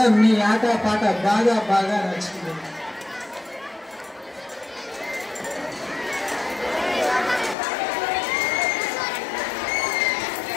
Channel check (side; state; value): right; drops out; at 7.6 s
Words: మీ ఆట పాట బాగా బాగా నచ్చింది.